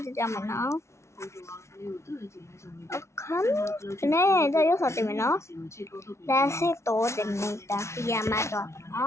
cho mình nó không nè tôi yếu thật thì mình nó đã sẽ tổ thì mình đã khi mà rồi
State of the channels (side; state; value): right; late; 0.13 ms